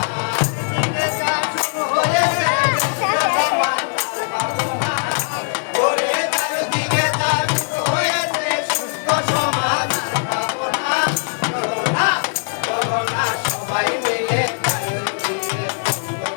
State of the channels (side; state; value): right; silent; digital silence